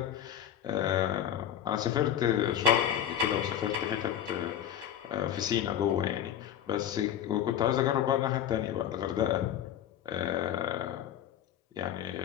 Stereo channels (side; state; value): right; quieter; 10.3 dB